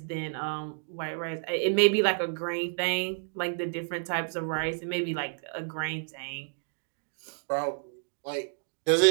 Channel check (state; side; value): silent; left; digital silence